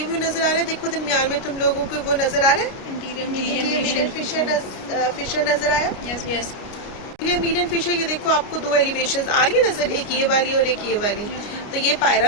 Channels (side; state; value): right; late; 29 ms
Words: व्यू नजर आ रहा है, देखो दरमियान में तुम लोगों को वो नजर आ रहा है, इंटीरियर फिशर नजर आया। ये मीडियम फिशर, ये देखो आपको दो एलिवेशंस आ रही है नजर, एक ये वाली और एक ये वाली। तो ये